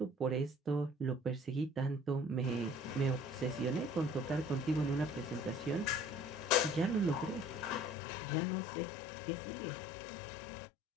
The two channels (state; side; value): drops out; right; at 8.0 s